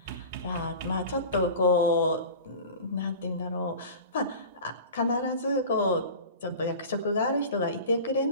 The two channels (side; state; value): both; inverted; correlation -0.36